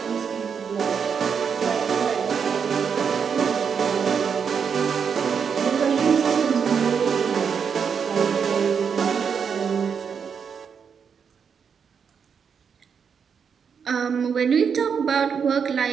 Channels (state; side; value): quieter; left; 6.6 dB